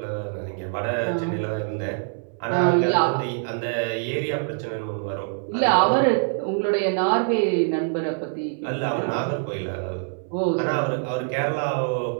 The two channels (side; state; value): left; silent; 62 dB below the other